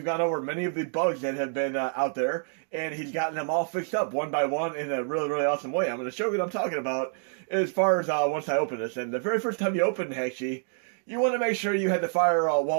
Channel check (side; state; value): left; silent; 60 dB below the other